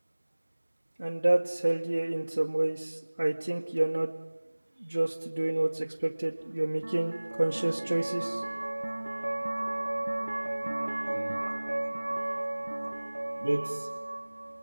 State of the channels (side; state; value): both; inverted; correlation -1.00